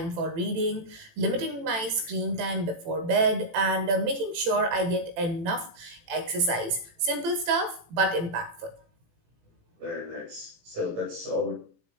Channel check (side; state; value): left; late; 18 ms